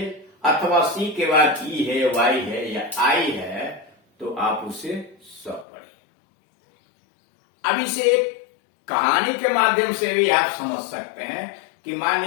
अथवा सी के बाद ई है, वाई है या आई है तो आप उसे स पढ़िए। अब इसे एक कहानी के माध्यम से भी आप समझ सकते हैं कि मान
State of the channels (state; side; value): drops out; right; at 5.7 s